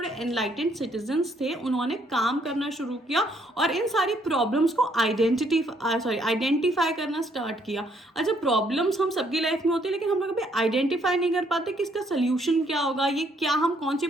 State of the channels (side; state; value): both; normal; correlation 0.68